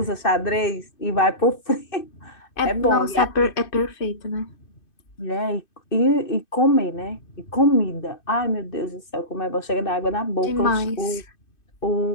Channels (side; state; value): right; late; 2.5 ms